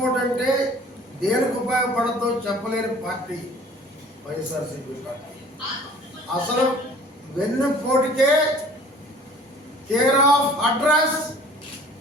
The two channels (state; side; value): normal; both; correlation 0.49